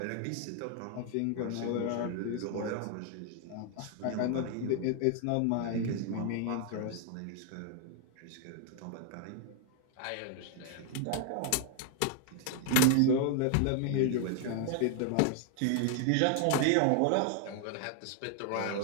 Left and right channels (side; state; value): both; different; correlation 0.00